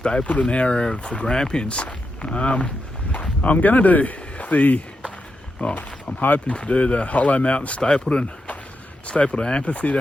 area of the Grampians. I'm going to do I'm hoping to do the Hollow Mountain Stapylton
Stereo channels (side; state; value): both; normal; correlation 0.86